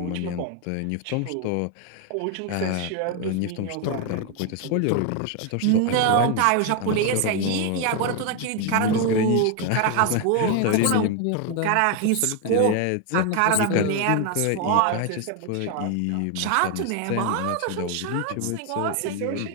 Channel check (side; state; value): both; different; correlation 0.01